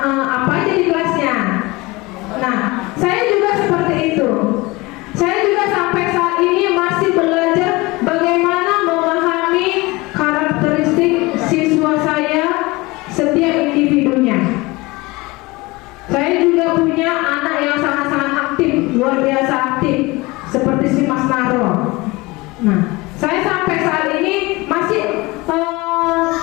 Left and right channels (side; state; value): right; quieter; 22.8 dB